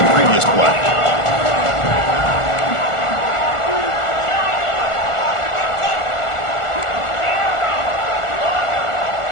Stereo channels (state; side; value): late; right; 1.4 ms